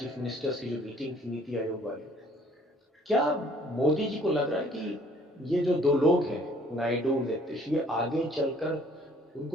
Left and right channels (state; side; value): normal; both; correlation 0.57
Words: मिनिस्टर्स की जो मीटिंग थी नीति आयोग वाली। क्या मोदी जी को लग रहा है कि ये जो 2 लोग हैं, नायडू, नीतीश, ये आगे चलकर